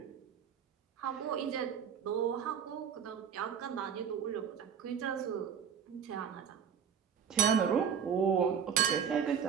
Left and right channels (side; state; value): left; quieter; 7.7 dB